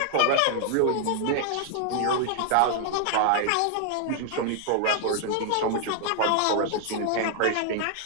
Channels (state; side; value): different; both; correlation 0.00